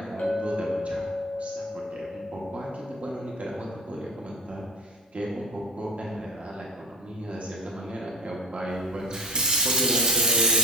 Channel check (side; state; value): both; normal; correlation 0.34